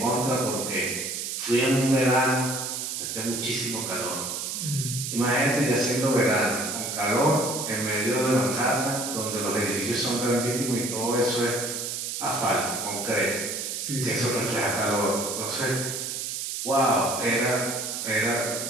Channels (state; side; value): noise; right; hiss, 4 dB below the sound